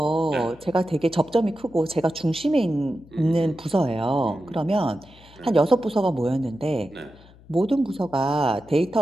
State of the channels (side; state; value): left; noise; hum, 24 dB below the sound